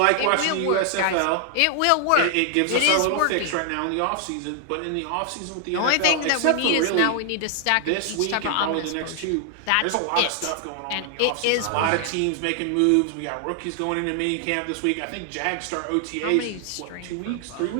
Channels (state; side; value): different; both; correlation 0.00